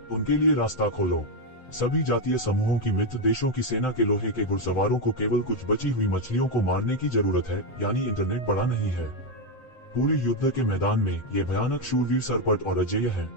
उनके लिए रास्ता खोलो। सभी जातीय समूहों की मित्र देशों की सेना के लोहे के घुड़सवारों को केवल कुछ बची हुई मछलियों को मारने की जरूरत है, यानी इंटरनेट बड़ा नहीं है। पूरे युद्ध के मैदान में ये भयानक शूरवीर सरपट और अजेय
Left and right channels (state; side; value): late; right; 7.8 ms